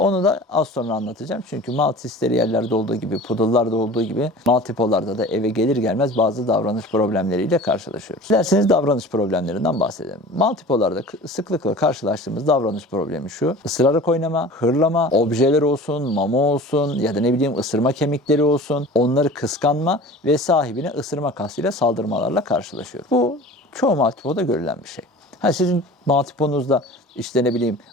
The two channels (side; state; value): both; normal; correlation 0.40